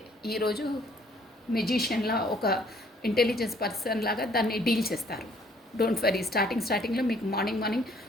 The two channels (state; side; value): normal; both; correlation 0.61